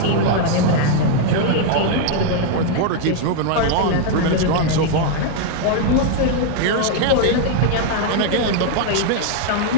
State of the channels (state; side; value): different; both; correlation 0.00